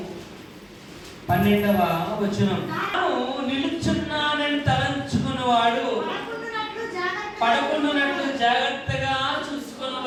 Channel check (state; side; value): identical; both; correlation 1.00